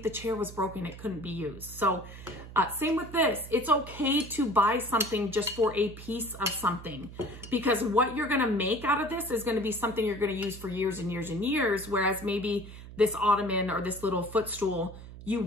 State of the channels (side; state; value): right; noise; hum, 14 dB below the sound